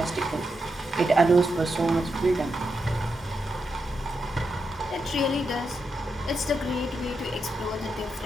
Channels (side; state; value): both; normal; correlation 0.85